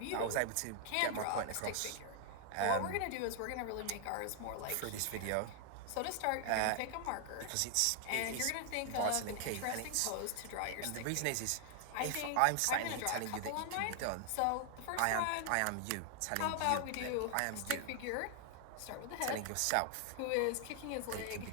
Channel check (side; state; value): both; different; correlation 0.00